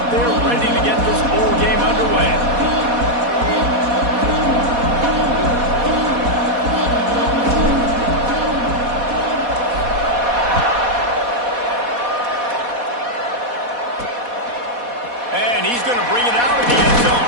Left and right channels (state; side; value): late; left; 4.1 ms